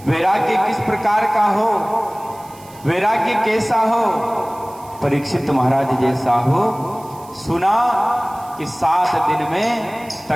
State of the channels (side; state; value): right; noise; hiss, 23 dB below the sound